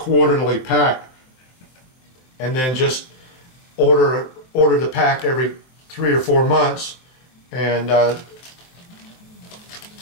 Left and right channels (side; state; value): right; late; 23 ms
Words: pack, and then just order the pack every 3 or 4 months, and